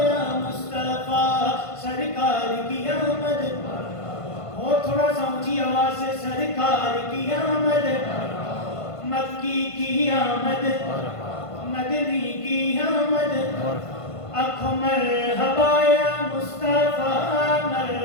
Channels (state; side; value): late; right; 1.5 ms